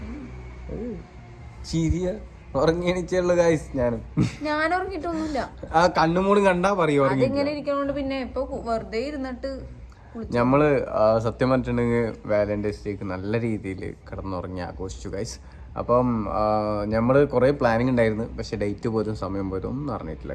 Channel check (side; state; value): both; identical; correlation 1.00